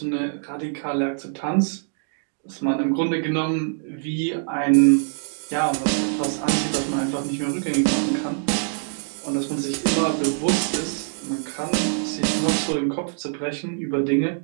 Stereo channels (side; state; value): left; silent; digital silence